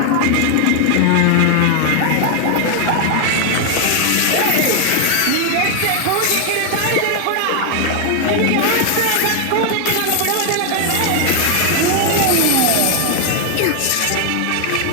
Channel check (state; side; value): different; both; correlation 0.00